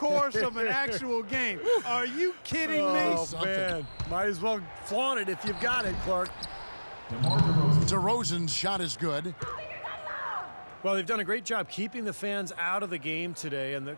of an actual game. Are you kidding me? Oh, man. Might as well flaunt it if you've got it, Clark. DeRozan's shot is good. Well, they've done a great job keeping the fans out of the game today, and the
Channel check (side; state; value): both; inverted; correlation -1.00